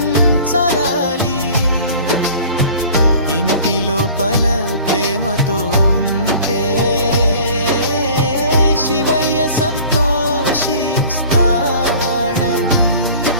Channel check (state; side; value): inverted; both; correlation -0.46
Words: ఇంటి లోపల ప్రేమతో ఉంటే శివయ్య సంతోషిస్తాడని.